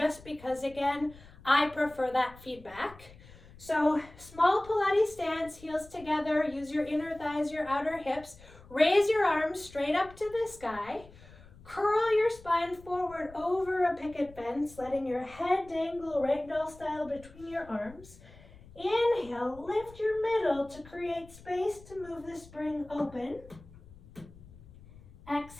because, again, I prefer that feedback. So small Pilates stance, heels together, use your inner thighs, your outer hips. Raise your arms straight up to the sky. Curl your spine forward over a picket fence, letting your head dangle ragdoll style between your arms. Inhale, lift your middle to create space to move the spring open.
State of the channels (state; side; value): noise; left; rumble, 21 dB below the sound